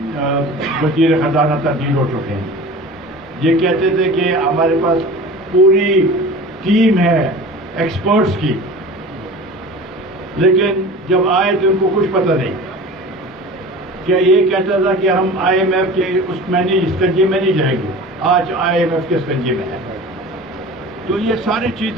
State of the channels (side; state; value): both; normal; correlation 0.37